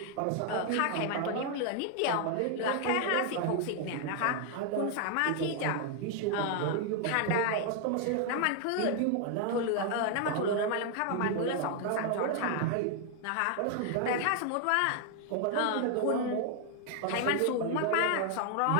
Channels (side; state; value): both; different; correlation 0.00